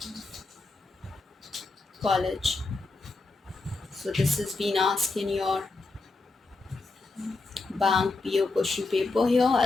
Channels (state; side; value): quieter; right; 3.6 dB